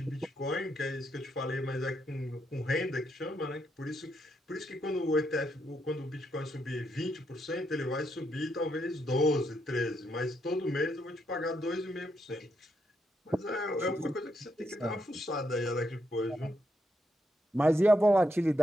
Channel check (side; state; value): both; normal; correlation 0.79